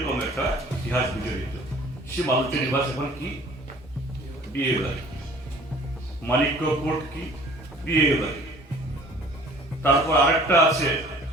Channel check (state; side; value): normal; both; correlation 0.50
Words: একটা ইতিহাস বিজড়িত। সে মালঞ্চের নিবাস এখন কি? বিয়ে বাড়ি। মানিক্য কোর্ট কি? বিয়ে বাড়ি। তারপর আরেকটা আছে